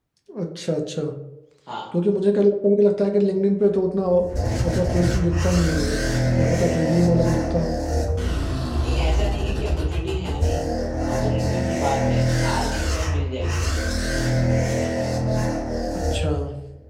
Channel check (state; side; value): identical; both; correlation 1.00